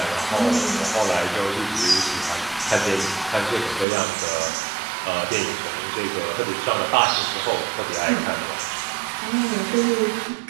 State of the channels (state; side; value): drops out; left; at 3.9 s